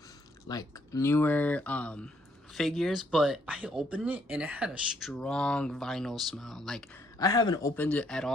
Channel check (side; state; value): both; normal; correlation 0.70